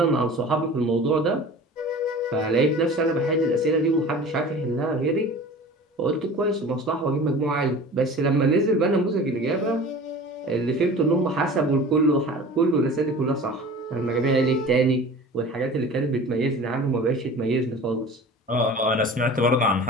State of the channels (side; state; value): both; normal; correlation 0.40